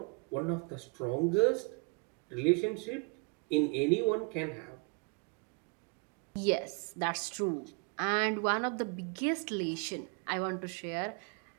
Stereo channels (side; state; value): left; quieter; 34.3 dB